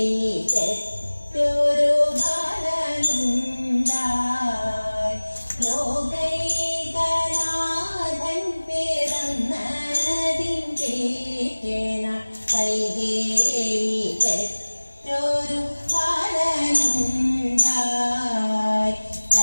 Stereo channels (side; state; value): both; inverted; correlation -1.00